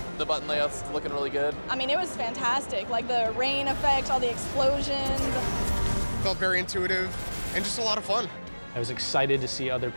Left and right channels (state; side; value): inverted; both; correlation -1.00